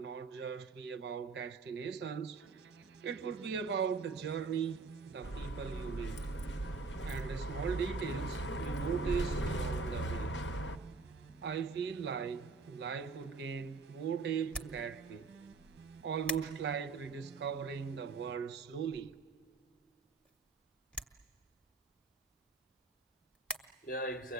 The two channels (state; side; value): quieter; left; 4.4 dB